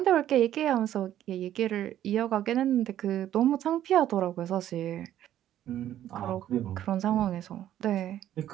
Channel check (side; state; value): left; quieter; 11.8 dB